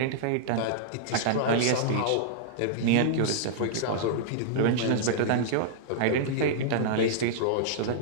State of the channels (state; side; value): different; both; correlation -0.02